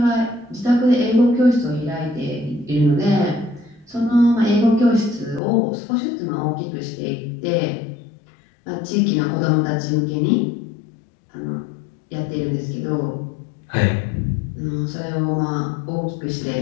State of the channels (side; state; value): right; drops out; at 5.4 s